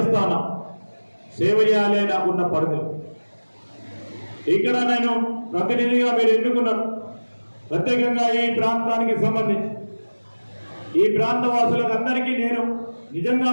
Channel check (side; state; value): both; inverted; correlation -1.00